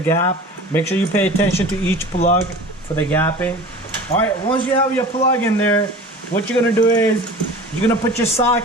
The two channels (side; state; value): both; normal; correlation 0.39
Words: Make sure you pay attention to each plug for the gapping. Alright, once you have your plug in there, what you're gonna do is you're gonna put your